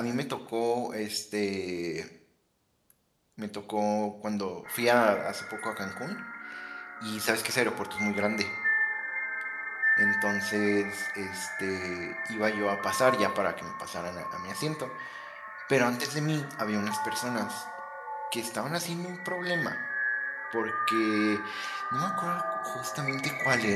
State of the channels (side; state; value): both; identical; correlation 1.00